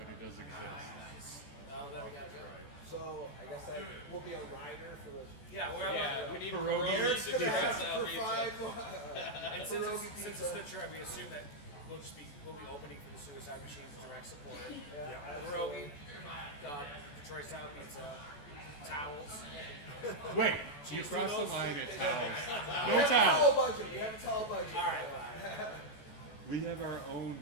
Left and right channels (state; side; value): late; right; 14 ms